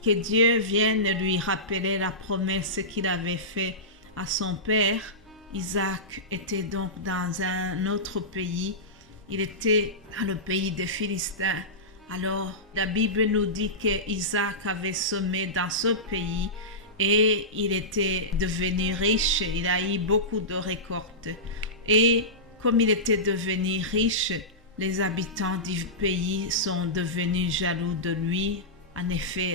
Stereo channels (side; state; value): both; normal; correlation -0.17